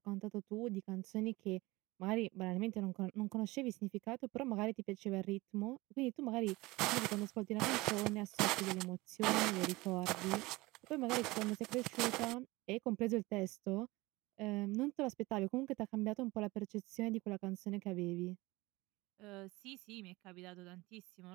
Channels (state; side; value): quieter; left; 21.4 dB